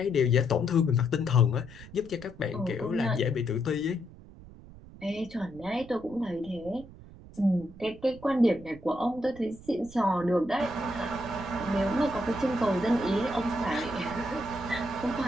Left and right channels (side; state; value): right; noise; rumble, 19 dB below the sound